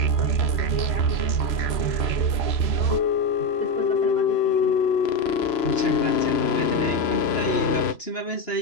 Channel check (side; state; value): right; late; 3.0 ms